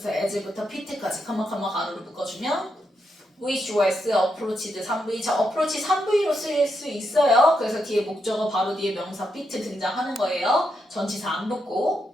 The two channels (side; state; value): both; normal; correlation 0.82